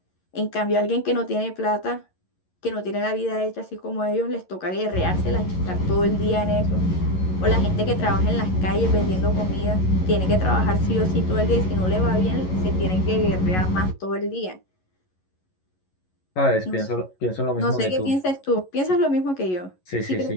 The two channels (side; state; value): right; late; 11 ms